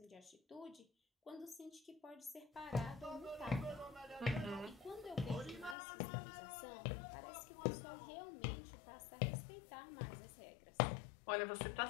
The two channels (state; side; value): drops out; right; at 5.8 s